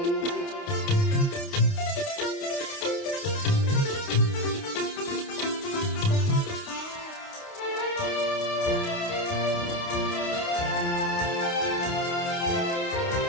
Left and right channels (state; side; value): late; right; 29 ms